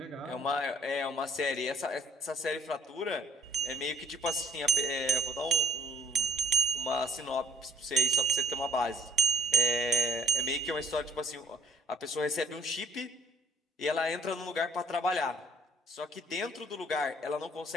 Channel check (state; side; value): normal; both; correlation 0.57